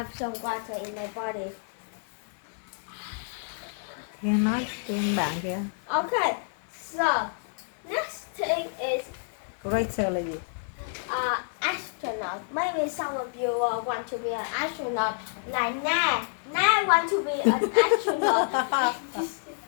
some water in my body. Kia nói trên bạn kìa. Okay, so next thing is Greater là gì? astronaut. Maybe some of you want to be an astronaut, like Na. Na want to be an astronaut.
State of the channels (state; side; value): silent; right; digital silence